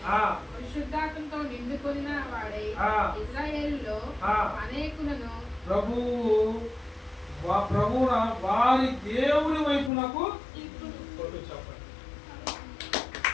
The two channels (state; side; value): drops out; right; at 9.9 s